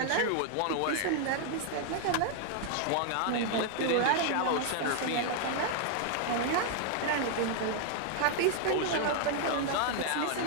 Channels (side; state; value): both; different; correlation 0.00